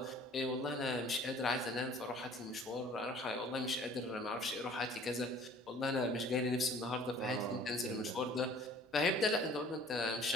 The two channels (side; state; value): both; normal; correlation 0.51